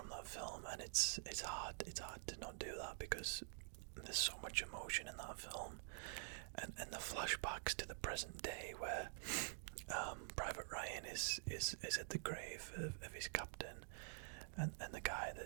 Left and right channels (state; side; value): silent; left; digital silence